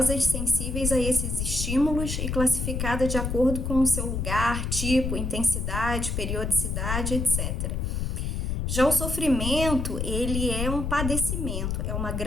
sensíveis a esses estímulos e classificada de acordo com o seu lugar, tipo, intensidade, periodicidade, etc. Já o sofrimento, ele é um padecimento, é uma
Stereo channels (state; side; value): noise; left; rumble, 2 dB below the sound